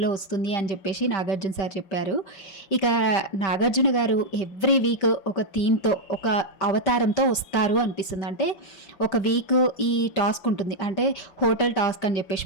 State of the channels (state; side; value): late; right; 5.1 ms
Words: వస్తుంది అని చెప్పేసి నాగార్జున సార్ చెప్పారు. ఇక నాగార్జున గారు ఎవ్రీ వీక్ ఒక థీమ్తో ఒక అవతారంతో వస్తారు అనిపిస్తుంది. అంటే ఒక వీక్ ఈ టాస్క్ ఉంటుంది, అంటే హోటల్ టాస్క్ అని చెప్పేసి